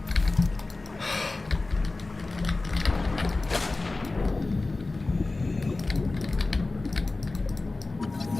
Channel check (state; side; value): quieter; right; 3.3 dB